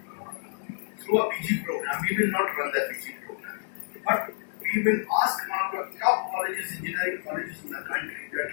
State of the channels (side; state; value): right; silent; 59 dB below the other